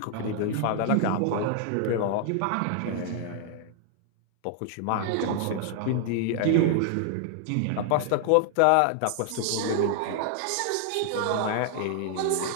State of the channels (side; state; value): both; different; correlation 0.00